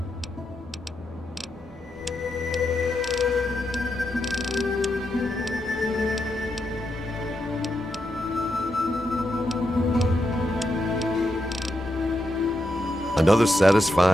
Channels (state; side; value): normal; both; correlation 0.84